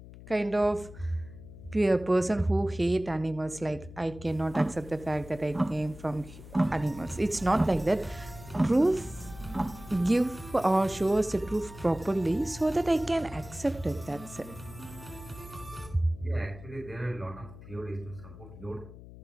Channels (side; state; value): left; noise; hum, 16 dB below the sound